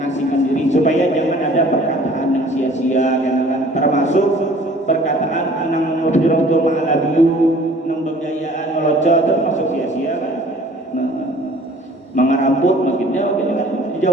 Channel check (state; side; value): normal; both; correlation 0.51